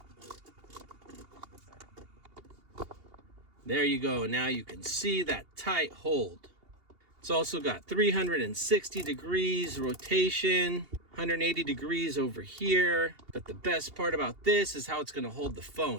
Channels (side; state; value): left; late; 2.8 ms